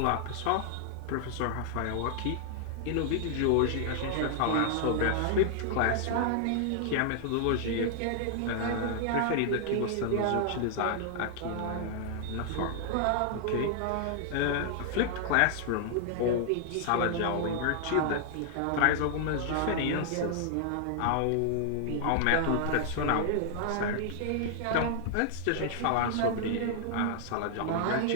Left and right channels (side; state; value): both; different; correlation -0.01